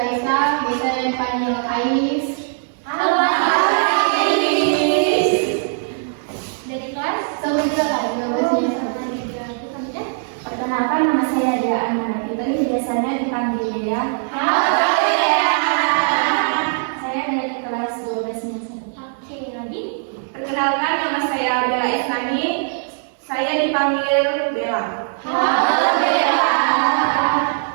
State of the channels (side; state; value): left; silent; 66 dB below the other